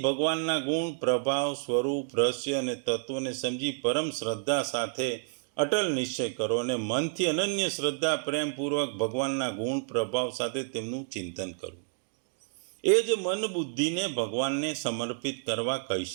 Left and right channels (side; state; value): left; silent; digital silence